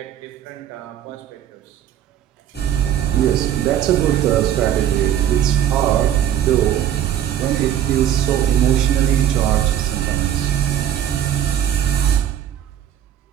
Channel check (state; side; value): quieter; left; 10.5 dB